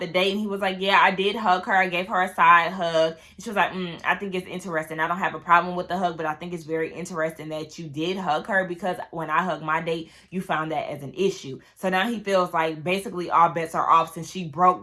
date. And he was like, yeah, I did hug her. I gave her a side hug. And she was like, I think it's interesting. I don't have a problem with the hug, but I think it's very interesting that you did hug her because when I hugged my date, you found that as an issue. So now he feels like basically all bets are off since she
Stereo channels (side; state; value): both; identical; correlation 1.00